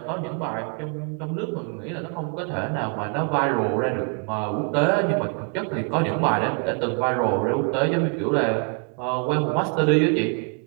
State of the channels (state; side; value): quieter; left; 36.1 dB